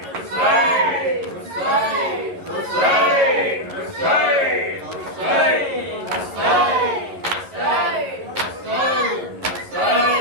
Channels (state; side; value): late; left; 11 ms